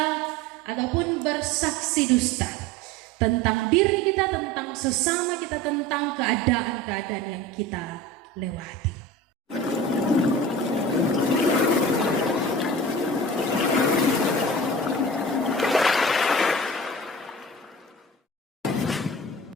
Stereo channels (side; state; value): both; normal; correlation 0.36